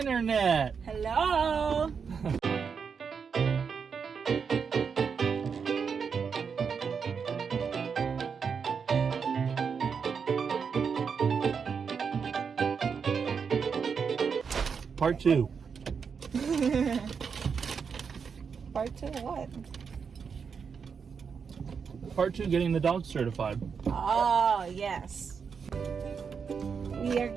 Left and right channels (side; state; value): left; quieter; 6.1 dB